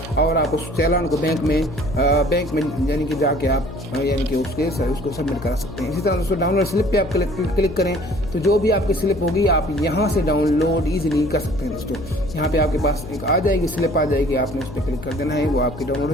और आप उस चालान को बैंक में यानी कि जाके आप यानी कि उसको सबमिट करा सकते हैं। इसी तरह दोस्तों डाउनलोड स्लिप पे आप क्लिक करें तो जो भी आपकी स्लिप होगी आप यहाँ से डाउनलोड ईजिली कर सकते हैं दोस्तों। यहाँ पे आपके पास एक आ जाएगी, स्लिप आ जाएगी, आपने उस पर क्लिक कर देना है, वो आपकी डाउनलोड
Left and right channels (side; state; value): left; noise; hum, 13 dB below the sound